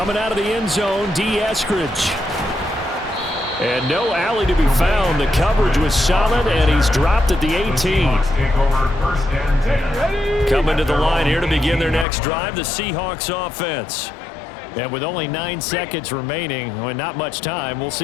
out of the end zone, D. Eskridge. And no alley to be found. The coverage was solid, and he's dropped at the 18. Coming to the line here to begin their next drive, the Seahawks offense. And with only 9 seconds remaining, well, not much time, we'll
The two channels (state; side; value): drops out; right; at 12.1 s